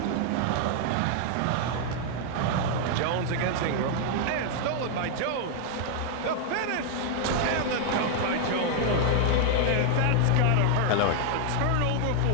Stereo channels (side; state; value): both; different; correlation 0.00